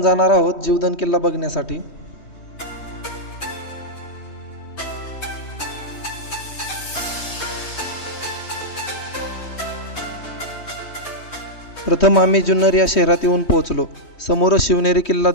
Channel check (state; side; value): late; right; 3.2 ms